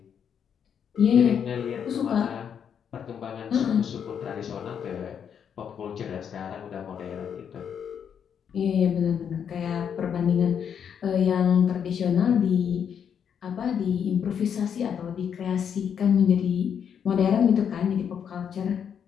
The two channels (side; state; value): right; quieter; 7.9 dB